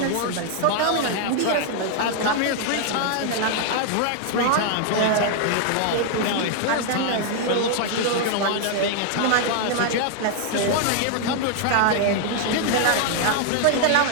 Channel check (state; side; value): different; both; correlation 0.00